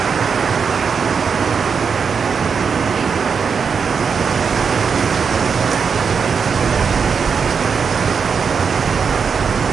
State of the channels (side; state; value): left; quieter; 6.0 dB